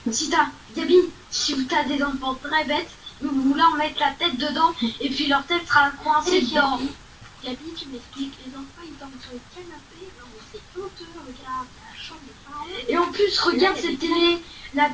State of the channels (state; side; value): identical; both; correlation 1.00